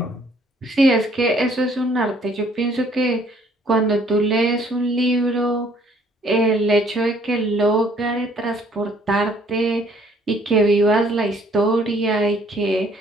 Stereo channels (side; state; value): both; normal; correlation 0.61